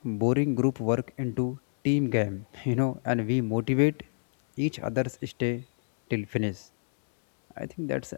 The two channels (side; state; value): right; silent; digital silence